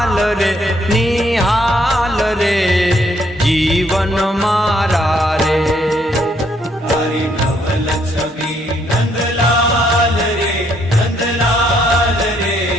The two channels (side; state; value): both; normal; correlation 0.70